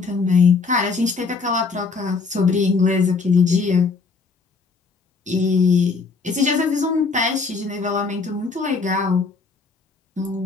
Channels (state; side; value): quieter; right; 4.5 dB